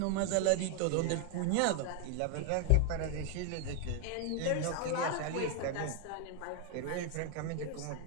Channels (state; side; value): different; both; correlation 0.00